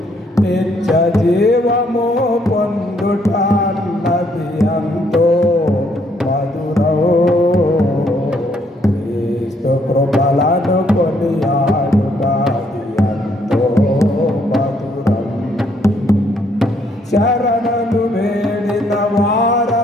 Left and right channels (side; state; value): both; normal; correlation 0.69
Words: నిత్య జీవము పొందుట అన్నది ఎంతో మధురం, క్రీస్తు కృపలను కొనియాడుటది ఎంతో మధురం. శరణను వేడిన